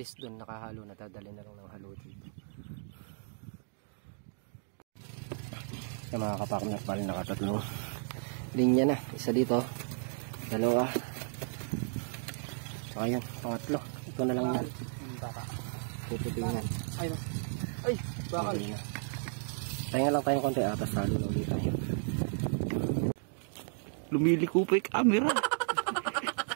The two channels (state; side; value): silent; left; digital silence